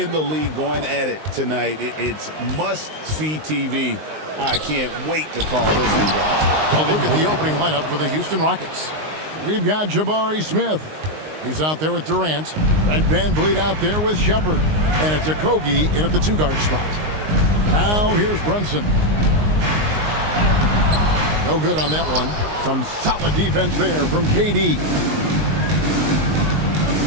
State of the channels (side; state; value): left; late; 19 ms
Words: the league going at it tonight, it's must-see TV. I can't wait to call this one, guys. A look at the opening lineup for the Houston Rockets. We've got Jabari Smith. He's out there with Durant. Fred VanVleet out there with Shepard. And it's Okogie in at the two-guard spot. Now here's Brunson. No good on that one. Some solid defense there from KD.